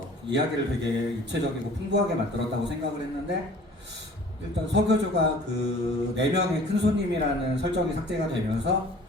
이야기를 되게 입체적이고 풍부하게 만들었다고 생각을 했는데 일단 석유주가 그 내면의 큰 손님이라는 설정이 삭제가 되면서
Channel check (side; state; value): both; normal; correlation 0.48